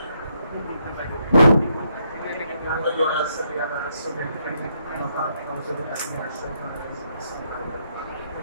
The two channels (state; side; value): inverted; both; correlation -0.76